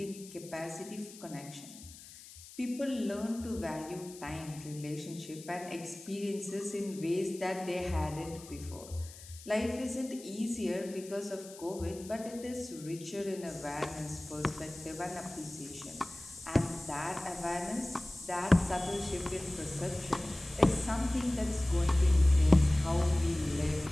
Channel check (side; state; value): left; noise; hiss, 17 dB below the sound